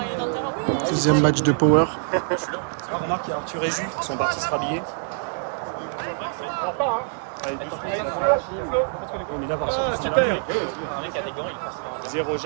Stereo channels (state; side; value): silent; left; 55 dB below the other